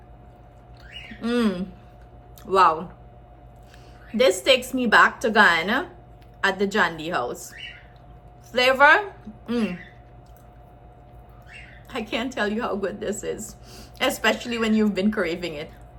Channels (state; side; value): identical; both; correlation 1.00